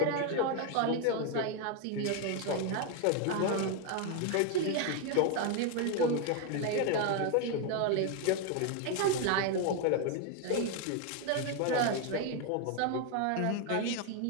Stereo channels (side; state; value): both; different; correlation 0.01